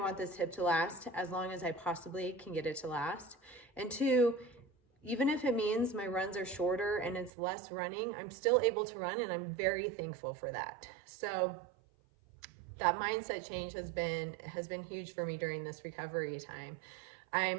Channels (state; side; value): drops out; left; at 7.3 s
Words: this hip to last as long as I possibly can get it to last, and two, even if it means my runs are shorter and it's less running, I'm still able to run, and I'm very thankful for that. So that mindset change has been huge for me during this recovery time.